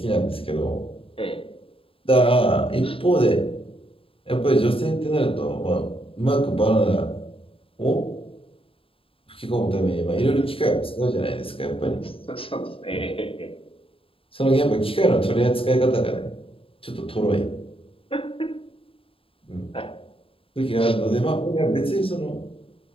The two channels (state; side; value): late; right; 0.27 ms